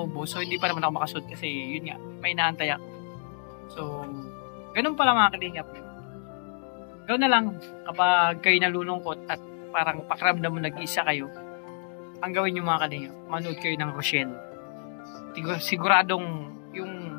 so hindi pa naman ako makasud kasi yun nga, may inaantay ako. So, ganun pala mga kalingap. Gawin na lang kapag kayo nalulungkot at parang pakiramdam mo nag-iisa kayo, ang gawin nyo mga kalingap, manood kayo ng Rochelle. Siguradong yung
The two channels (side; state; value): right; silent; 59 dB below the other